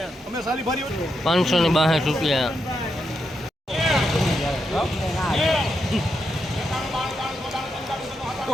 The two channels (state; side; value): normal; both; correlation 0.83